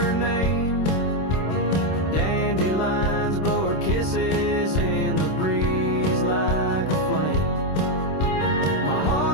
name. Dandelions blow her kisses in the breeze like a flame. My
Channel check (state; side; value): late; right; 26 ms